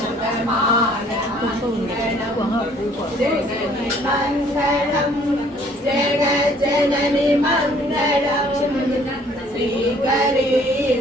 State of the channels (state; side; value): normal; both; correlation 0.58